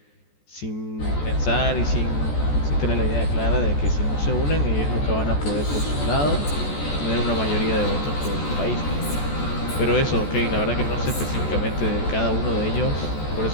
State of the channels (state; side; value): late; right; 14 ms